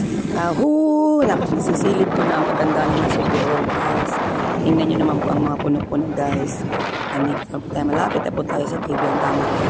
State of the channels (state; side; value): identical; both; correlation 1.00